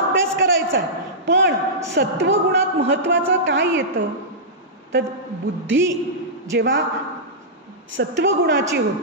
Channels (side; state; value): both; normal; correlation -0.14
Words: करायचा आहे. पण सत्वगुणात महत्त्वाचं काय येतं तर बुद्धी जेव्हा सत्वगुणाची